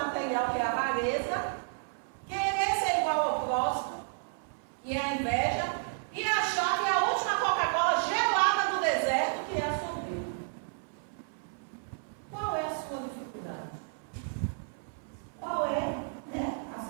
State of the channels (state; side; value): silent; left; 57 dB below the other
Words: que é a avareza, querer ser igual ao próximo, que é a inveja, e achar que a última Coca-Cola gelada do deserto, que é a soberba. Qual é a sua dificuldade? Qual é, né, a